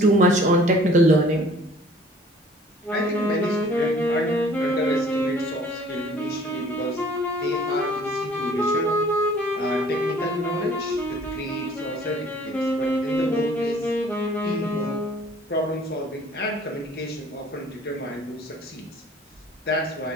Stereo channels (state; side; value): normal; both; correlation 0.53